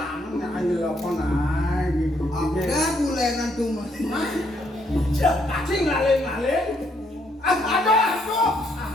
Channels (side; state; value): both; normal; correlation 0.71